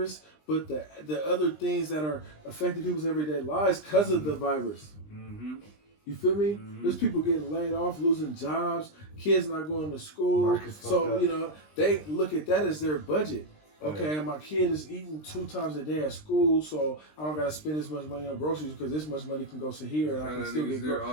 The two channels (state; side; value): late; right; 20 ms